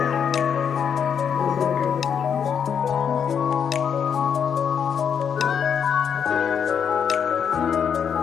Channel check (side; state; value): right; quieter; 7.6 dB